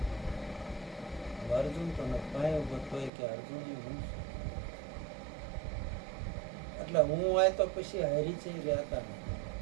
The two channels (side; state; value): left; drops out; at 3.1 s